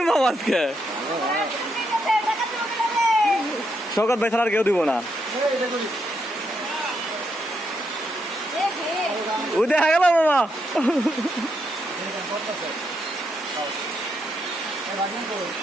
মামা আজকে শওকত ভাই ছাড়া আর কেউ দিব না। ও দেখা গেল মামা।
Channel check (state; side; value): normal; both; correlation 0.79